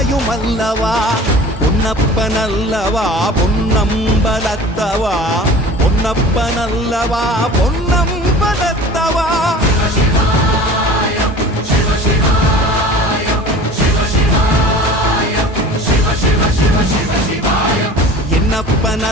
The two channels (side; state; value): both; normal; correlation 0.41